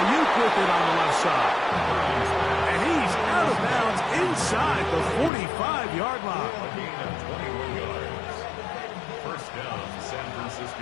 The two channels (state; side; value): drops out; right; at 5.3 s